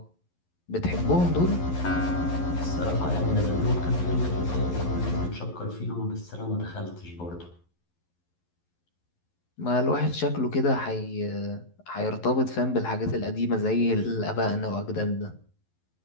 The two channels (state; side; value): late; right; 11 ms